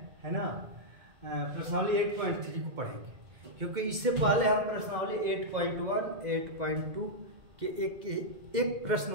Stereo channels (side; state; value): left; late; 2.2 ms